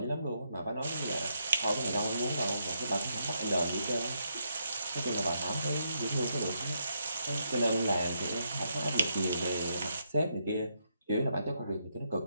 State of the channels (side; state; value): both; inverted; correlation -0.78